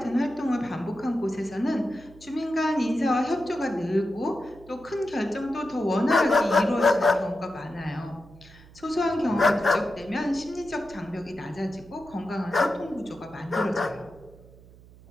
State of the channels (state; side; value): noise; right; hum, 22 dB below the sound